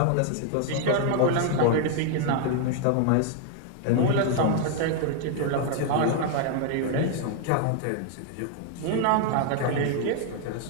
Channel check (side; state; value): both; different; correlation 0.00